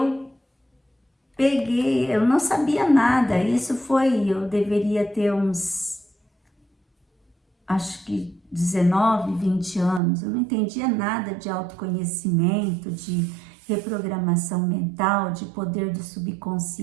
peguei, eu não sabia nada, eu deveria ter uns, acho que 19, 20 anos, eu não entendia nada de autoconhecimento, de reprogramação mental, de poder do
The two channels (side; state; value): left; drops out; at 10.0 s